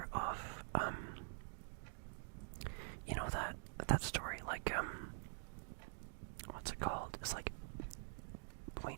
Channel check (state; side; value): silent; left; digital silence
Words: of you know that story, like what's it called? It's like